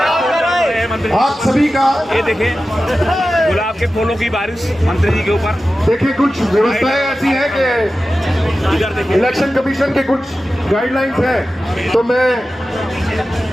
आप सभी का ये देखें गुलाब के फूलों की बारिश मंत्री जी के ऊपर। देखिए कुछ व्यवस्थाएं ऐसी हैं कि इलेक्शन कमीशन के कुछ गाइडलाइंस हैं, तो मैं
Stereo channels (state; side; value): normal; both; correlation 0.94